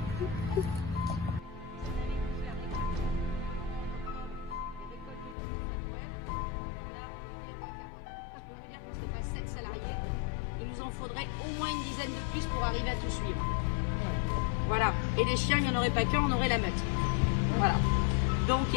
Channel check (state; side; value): drops out; right; at 5.4 s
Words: Faudrait au moins une dizaine de plus pour arriver à tout suivre. Voilà. Et les chiens, il n'y en aurait pas qu'un, on aurait la meute. Voilà. Donc